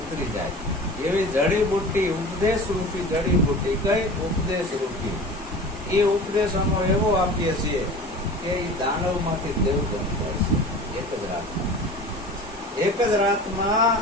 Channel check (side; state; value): both; normal; correlation 0.37